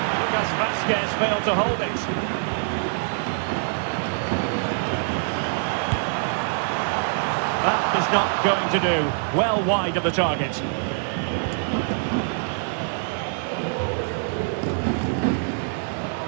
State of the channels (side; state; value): left; silent; digital silence